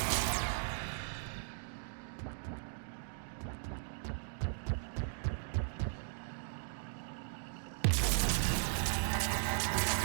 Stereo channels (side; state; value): left; silent; digital silence